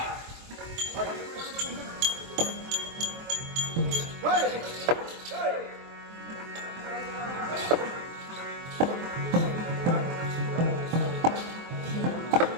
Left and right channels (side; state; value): left; late; 23 ms